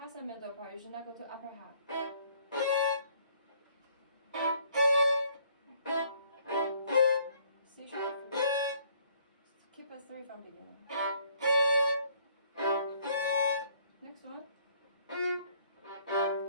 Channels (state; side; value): inverted; both; correlation -0.63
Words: the middle part. You should not go to upper half. C sharp. Keep a 3 from beginning. Next one.